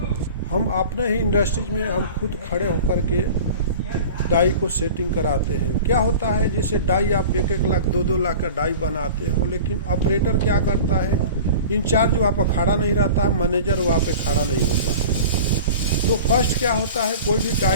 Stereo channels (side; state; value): both; inverted; correlation -0.38